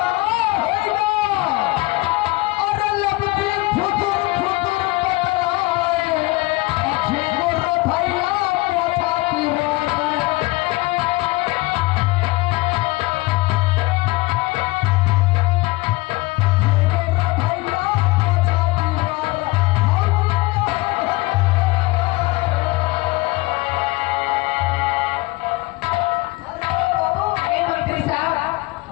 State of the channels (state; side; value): quieter; right; 21.8 dB